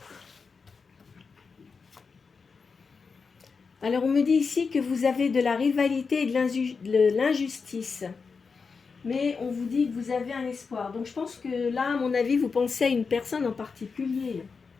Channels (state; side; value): quieter; right; 5.1 dB